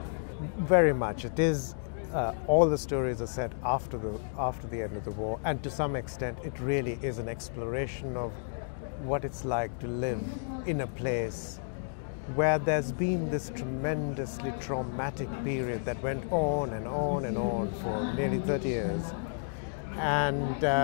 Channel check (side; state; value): right; silent; digital silence